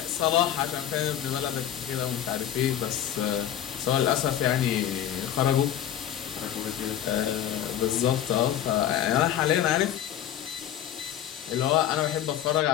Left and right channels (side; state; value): right; quieter; 10.9 dB